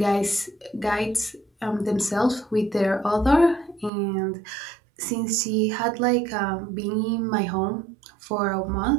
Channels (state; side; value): drops out; left; at 3.9 s